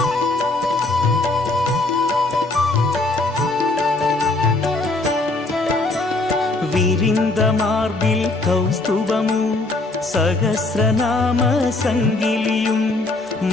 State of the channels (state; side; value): quieter; right; 3.1 dB